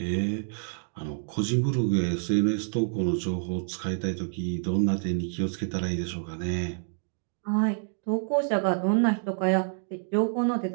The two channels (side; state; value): left; silent; digital silence